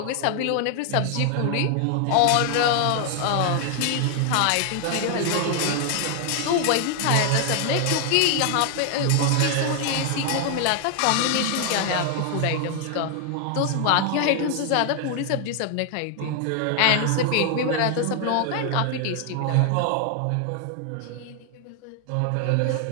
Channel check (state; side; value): different; both; correlation 0.00